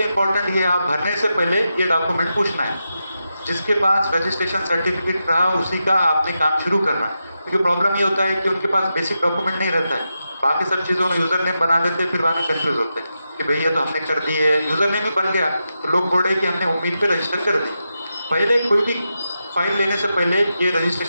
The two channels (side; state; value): both; inverted; correlation -0.88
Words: इम्पोर्टेंट ये आप भरने से पहले ये डॉक्यूमेंट पूछना है। जिसके पास रजिस्ट्रेशन सर्टिफिकेट रहा उसी का आपने काम शुरू करना है, क्योंकि प्रॉब्लम ये होता है कि उनके पास बेसिक डॉक्यूमेंट नहीं रहता है। बाकी सब चीज़ों में यूज़र नेम बना देते हैं, फिर बाद में कन्फ्यूज होते हैं कि भैया तो हमने कर दी है, यूज़र नेम ही बन गया तो लोग बोले कि हमने उम्मीद पे रजिस्टर कर दी। पहले कोई भी फाइल लेने से पहले ये